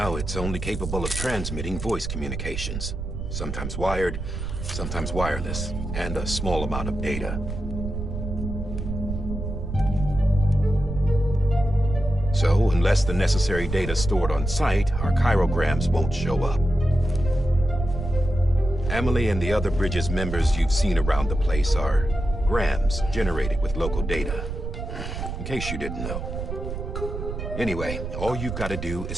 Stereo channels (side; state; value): right; noise; rumble, 6 dB below the sound